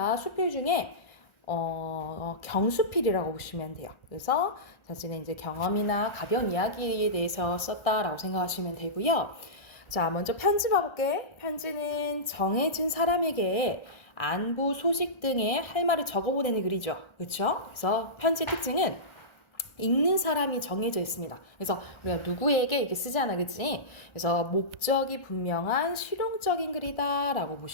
수필 중에 경수필이라고 보시면 돼요. 그래서 자신의 이제 경험이나 가벼운 이야기에 대해서 썼다라고 생각하시면 되고요. 자, 먼저 편지 봐볼게. 편지는 정해진 사람에게 안부, 소식 등의 할 말을 적어보내는 글이죠. 그렇죠? 그래서 편지의 특징은 읽는 사람이 정해져 있습니다. 그래서 우리가 누구에게 이렇게 쓰잖아, 그치? 그래서 목적이 분명한 실용적인 글이다라고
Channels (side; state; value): right; late; 1.4 ms